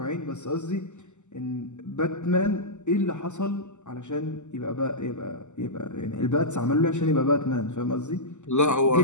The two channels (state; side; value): late; right; 0.84 ms